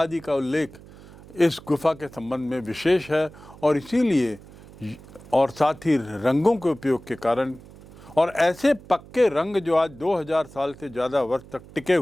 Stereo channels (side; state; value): right; noise; hum, 20 dB below the sound